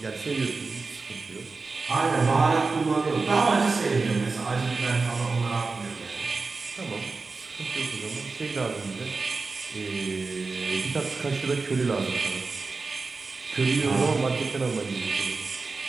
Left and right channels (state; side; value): quieter; left; 4.1 dB